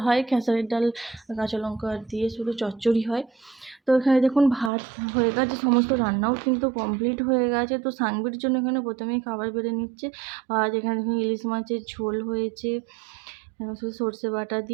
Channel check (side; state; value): left; drops out; at 4.7 s